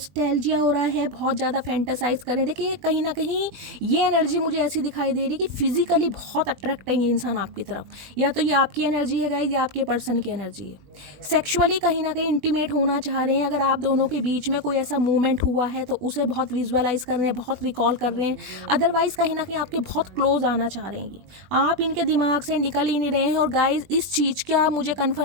हो रहा है, बहुत ज़्यादा फैंटेसाइज करें। देखिए कहीं ना कहीं ये एनर्जी मुझे ऐसी दिखाई दे रही है कि फिजिकली बहुत अट्रैक्ट है ये इंसान आपकी तरफ, या तो ये आपकी एनर्जी है गाइज या आपके पर्सन की एनर्जी है। सेक्सुअली कहीं ना कहीं इंटीमेट होना चाह रहे हैं। अगर आप दोनों के बीच में कोई ऐसा मूवमेंट हुआ है तो उसे बहुत विजुअलाइज कर रहे हैं, बहुत रिकॉल कर रहे हैं। अदरवाइज कहीं ना कहीं आपके बहुत क्लोज आना चाह रहे हैं, आप इनके दिमाग से निकल ही नहीं रहे हैं। और गाइज इस चीज़ का मुझे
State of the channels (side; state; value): left; late; 20 ms